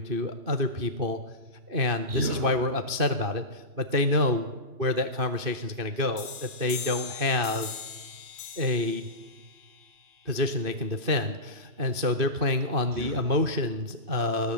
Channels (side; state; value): left; late; 2.6 ms